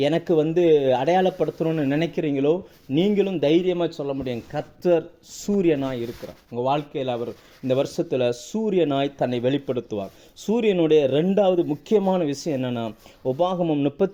அடையாளப்படுத்தணும்னு நினைக்கிறீங்களோ, நீங்களும் தைரியமாக சொல்ல முடியும், கர்த்தர் சூரியனாய் இருக்கிறார். உங்கள் வாழ்க்கையில் அவர் இந்த வருஷத்தில் சூரியனாய் தன்னை வெளிப்படுத்துவார். சூரியனுடைய 2வது முக்கியமான விஷயம் என்னென்னா, உபாகமம்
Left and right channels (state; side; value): identical; both; correlation 1.00